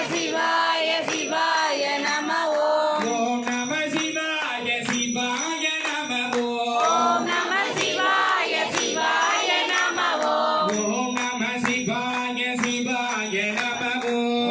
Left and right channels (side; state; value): both; identical; correlation 1.00